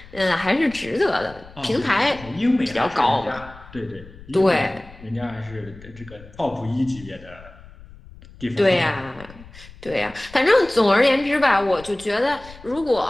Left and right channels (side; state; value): left; noise; rumble, 20 dB below the sound